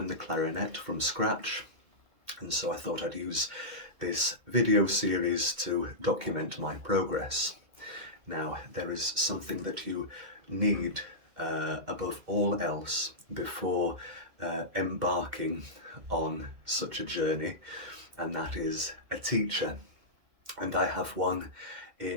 the clarinet from scratch, and so I thought I'd use this video series to document my progress. Now, there is something that you need above all else before embarking on such a journey, and that is a teacher. And I have one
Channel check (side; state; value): left; late; 2.1 ms